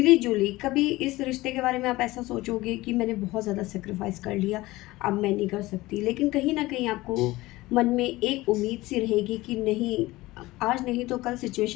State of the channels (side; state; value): right; quieter; 19.1 dB